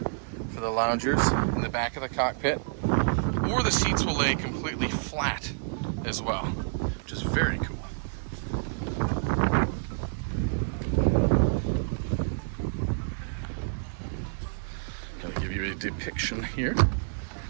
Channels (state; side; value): silent; left; digital silence